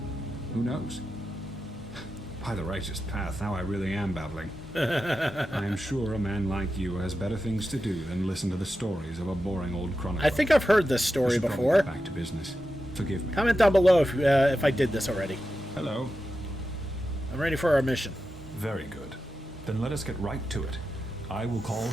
who knows? By the righteous path, now I really am babbling. I am sure a man like you has better things to do than listen to the stories of a boring old chronicler. I think I've heard this story before. Get back to business. Forgive me. Comment down below if I did this already. Hello. I'm ready for our mission. Very good. Then let us get right to it. I will call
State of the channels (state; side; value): normal; both; correlation 0.90